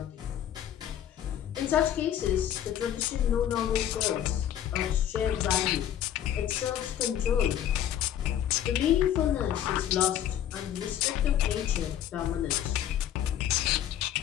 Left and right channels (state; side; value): quieter; right; 10.8 dB